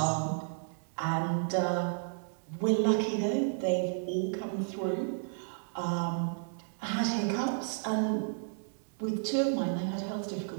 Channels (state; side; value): silent; left; digital silence